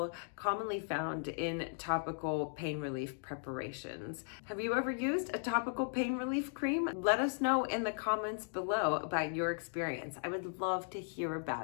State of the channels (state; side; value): silent; right; 53 dB below the other